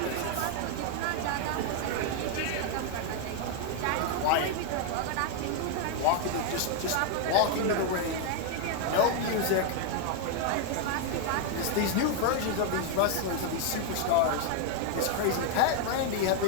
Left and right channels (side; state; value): both; different; correlation 0.00